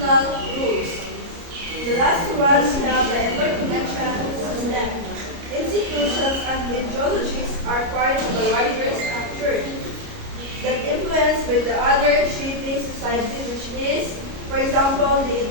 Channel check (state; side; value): late; left; 29 ms